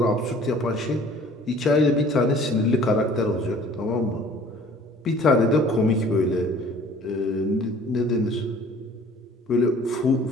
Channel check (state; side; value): normal; both; correlation 0.51